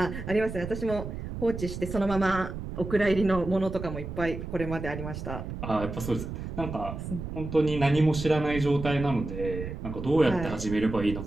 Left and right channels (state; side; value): noise; right; rumble, 7 dB below the sound